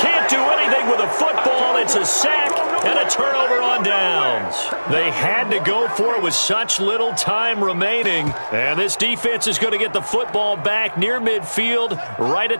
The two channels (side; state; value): both; inverted; correlation -1.00